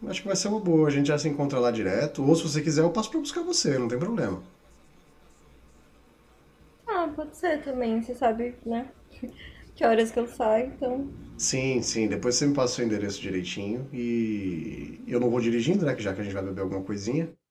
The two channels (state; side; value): identical; both; correlation 1.00